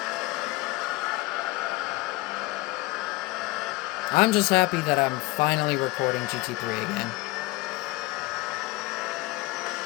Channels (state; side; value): quieter; right; 21.9 dB